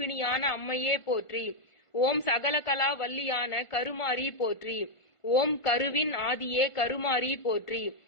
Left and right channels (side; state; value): right; late; 1.5 ms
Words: அம்மையே போற்றி. ஓம் சகலகலா வல்லியான கருமாரி போற்றி. ஓம் கருவின் ஆதியே கருமாரி போற்றி.